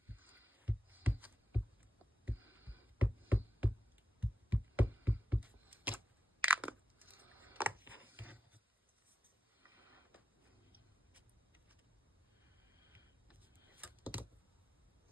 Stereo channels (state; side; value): normal; both; correlation 0.90